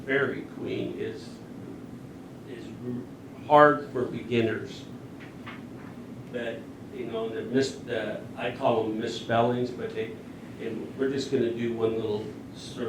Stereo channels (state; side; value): identical; both; correlation 1.00